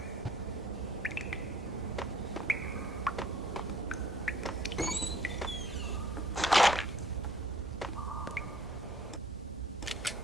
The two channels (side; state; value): both; normal; correlation 0.58